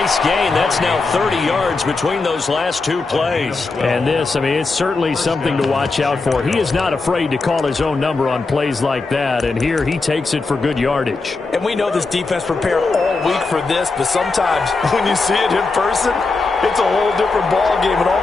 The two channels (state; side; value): quieter; right; 3.8 dB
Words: gain. That's now 30 yards between those last two plays. And this, I mean, it's certainly something to watch out for. He is not afraid to call his own number on plays like that, and here he takes it for good yardage. And we know this defense prepared all week for this, but sometimes when you see it in person, it's a whole different ball game, and all